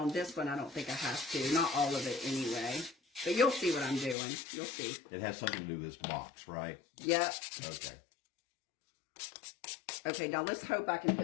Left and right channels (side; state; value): right; drops out; at 4.2 s